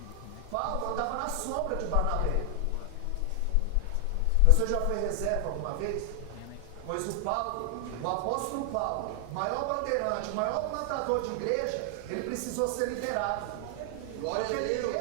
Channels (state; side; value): different; both; correlation 0.00